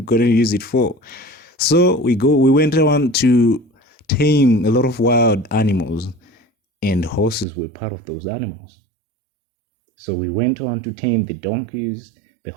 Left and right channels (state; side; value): drops out; left; at 7.5 s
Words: going to use it for. So we went on to tame a lot of wild animals, and horses were part of those animals. So we went on to tame the donkeys, the